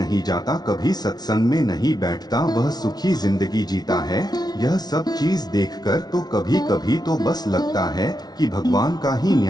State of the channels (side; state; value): right; late; 0.19 ms